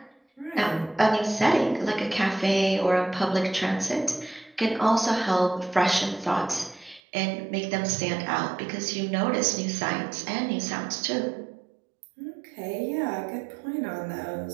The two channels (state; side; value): drops out; left; at 7.0 s